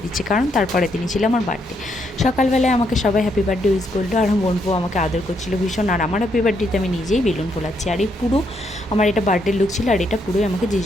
দিচ্ছে, কারণ তারপরে দিনই ছিল আমার বার্থডে। সকালবেলায় আমাকে সবাই হ্যাপি বার্থডে উইশ করলো, আর বোনপো আমাকে আদর করছিল ভীষণ, আর আমার হ্যাপি বার্থডেতে আমি নিজেই বেলুন ফোলাচ্ছি, আর এই পুরো আমার এটা বার্থডে লুক ছিল, আর এটা পুরোই আমাকে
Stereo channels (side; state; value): both; normal; correlation 0.76